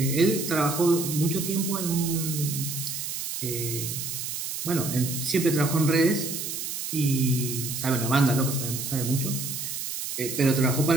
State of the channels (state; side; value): noise; right; hiss, 5 dB below the sound